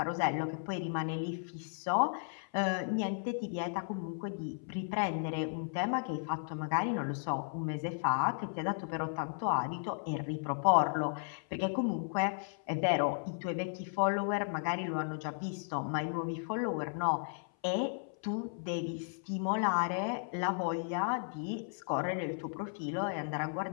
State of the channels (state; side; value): silent; right; 55 dB below the other